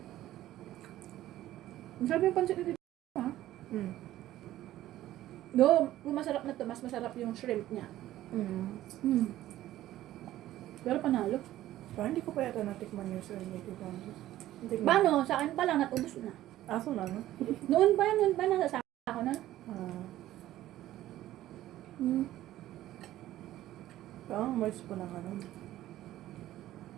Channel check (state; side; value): quieter; left; 14.2 dB